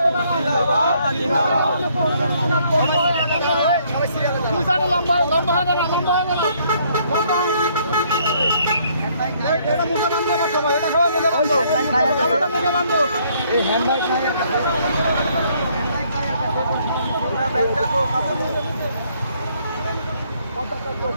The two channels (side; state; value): both; inverted; correlation -0.66